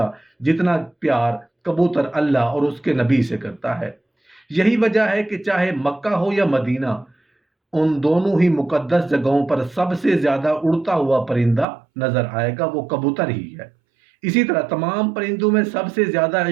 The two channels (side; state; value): left; drops out; at 11.7 s